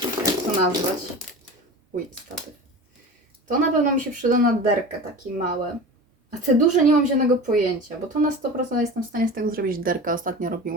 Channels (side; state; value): both; normal; correlation 0.32